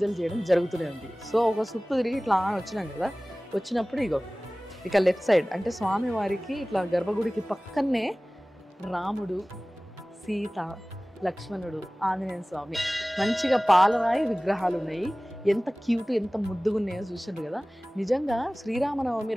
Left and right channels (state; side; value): normal; both; correlation 0.98